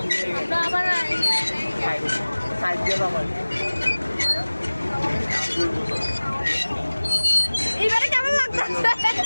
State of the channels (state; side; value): inverted; both; correlation -1.00